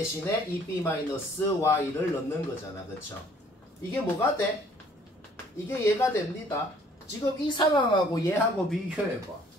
2b-y를 넣는 거잖아. 그쵸? 이게 뭐가 돼? 이게 얘가 됩니다. 지금 이 상황하고 얘하고 비교해봐.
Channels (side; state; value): both; normal; correlation 0.58